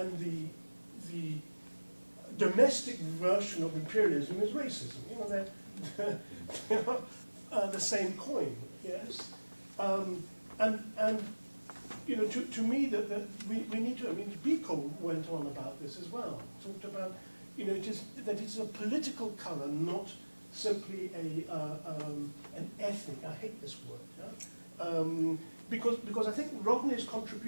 the domestic version of imperialism is racism? They're the same coin, yes. To me, that we need to. I mean, Biko went on about this as well. Talked about, it's a political color, not simply an ethnic. I hate this word. Yeah? Because I think Rodney's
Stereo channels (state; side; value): inverted; both; correlation -1.00